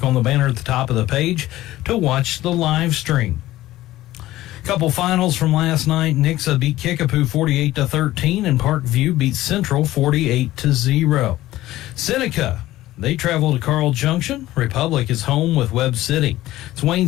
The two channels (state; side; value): quieter; right; 15.7 dB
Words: on the banner at the top of the page to watch the live stream. Couple finals from last night. Nixa beat Kickapoo 48-13, and Parkview beat Central 48-0. Seneca, they travel to Carl Junction. Republic is home with Webb City. It's